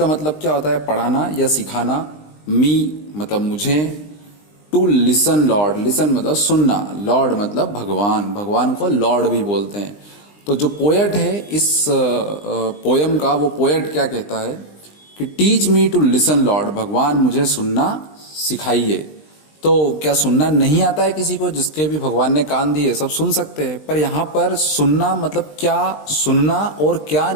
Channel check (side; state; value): right; late; 20 ms